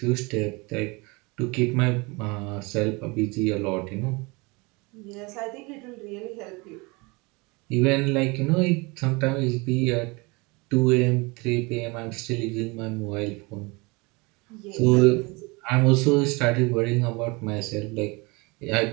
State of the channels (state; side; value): quieter; left; 26.8 dB